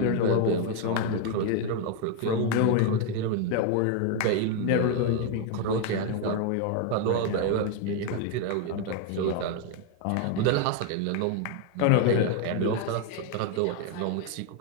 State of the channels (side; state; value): both; different; correlation 0.01